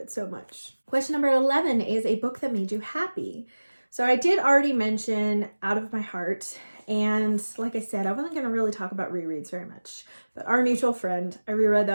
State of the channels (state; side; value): inverted; both; correlation -1.00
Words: so much. Question number 11 is a book that made you happy. So I did already mention Out of My Heart, and like I said, I wasn't going to really talk about rereads very much, but Our Mutual Friend, I reread